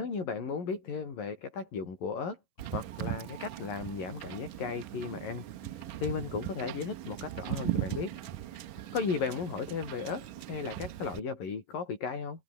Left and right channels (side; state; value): right; late; 11 ms